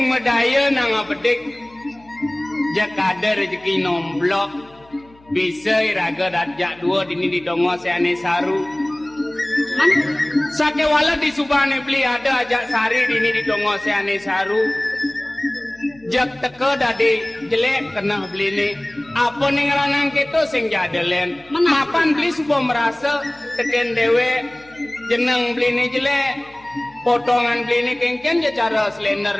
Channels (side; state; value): left; noise; hum, 28 dB below the sound